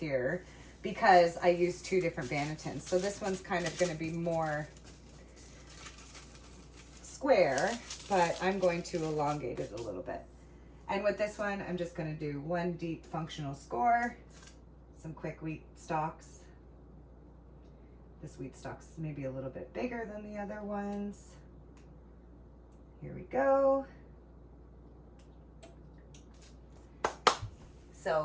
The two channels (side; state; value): both; identical; correlation 1.00